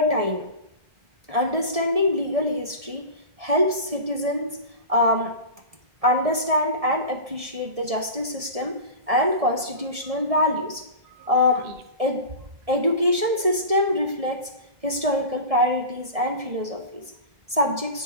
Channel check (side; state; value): left; late; 1.7 ms